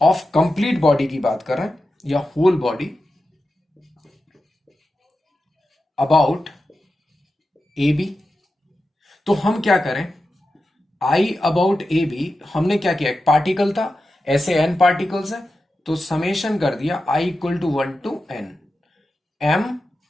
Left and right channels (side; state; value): both; normal; correlation 0.91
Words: complete body की बात करें या whole body about A B, तो हम क्या करें, आई अबाउट ए बी हमने क्या किया, एक पार्टिकल था, ऐसे एन पार्टिकल्स है तो समेशन कर दिया I equal to 1 to n M